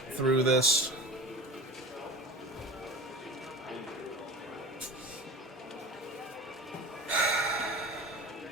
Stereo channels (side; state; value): both; normal; correlation 0.35